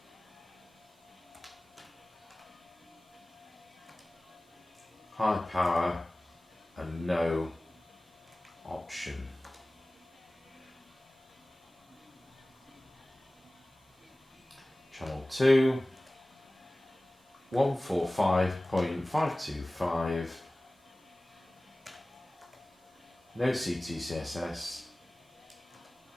high power and no option. Channel 2, 145.525, no CTCSS,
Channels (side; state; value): both; normal; correlation 0.98